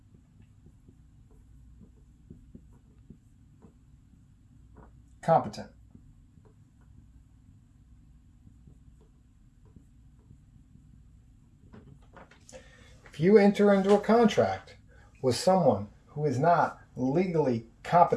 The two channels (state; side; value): identical; both; correlation 1.00